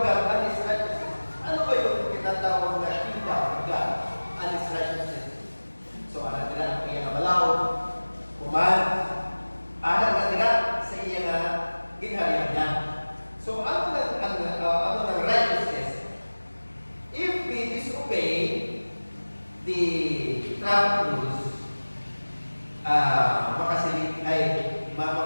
God and His righteousness. Ano ba yung tinatawag na kingdom of God and His righteousness? So, alam nila, kaya nga malaw, kuman, alam na nila sa iya nga ginharian niya. So, ano ng righteousness? If we disobey the traffic rules, makasilip ay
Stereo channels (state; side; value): inverted; both; correlation -1.00